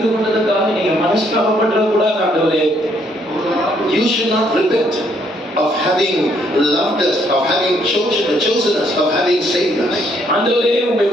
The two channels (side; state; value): both; normal; correlation 0.69